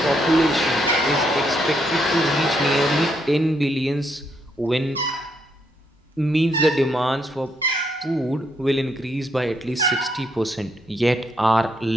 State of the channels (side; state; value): both; normal; correlation 0.75